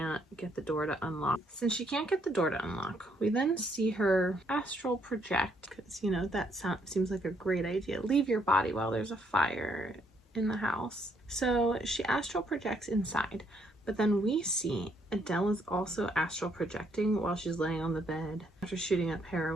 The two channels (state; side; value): normal; both; correlation 0.71